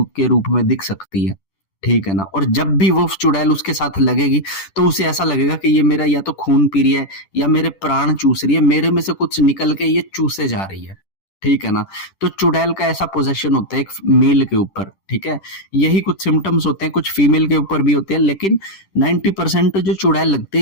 रूप में दिख सकती है, ठीक है ना। और जब भी वो चुड़ैल उसके साथ लगेगी तो उसे ऐसा लगेगा कि ये मेरा या तो खून पी रही है या मेरे प्राण चूस रही है, मेरे में से कुछ निकल के ये चूसे जा रही है, ठीक है ना। तो चुड़ैल का ऐसा पोजेशन होता है एक मेल के ऊपर, ठीक है। यही कुछ सिम्टम्स होते हैं, कुछ फीमेल के ऊपर भी होते हैं, लेकिन 90% जो चुड़ैल लगती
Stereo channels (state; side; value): late; right; 10 ms